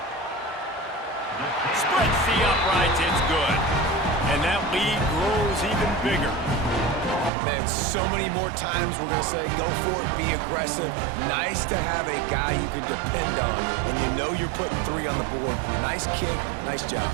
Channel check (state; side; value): drops out; left; at 7.3 s